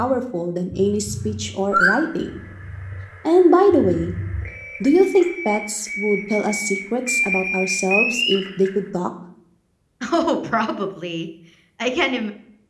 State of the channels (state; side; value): identical; both; correlation 1.00